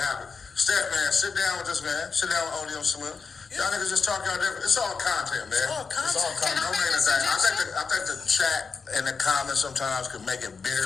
happen. Stet, man, sit down with this man. Sit down with ODM Slim. Y'all niggas just talk y'all different. It's all content, man. It's all content. Can I No make a main thing. suggestion? I think the chat and the comments sometimes could make it bigger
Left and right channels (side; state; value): right; quieter; 5.1 dB